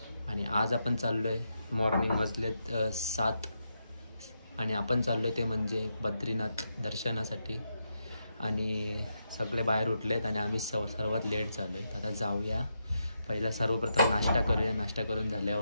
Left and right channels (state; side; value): inverted; both; correlation -0.83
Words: आणि आज आपण चाललो आहे मॉर्निंग वाजलेत 7 आणि आपण चाललो आहे ते म्हणजे बद्रीनाथ दर्शनासाठी. आणि सगळे बाहेर उठलेत आणि आम्ही सर्वात लेट झालो आहे. आता जाऊया, पहिला सर्वप्रथम नाश्ता करूया. नाश्ता करून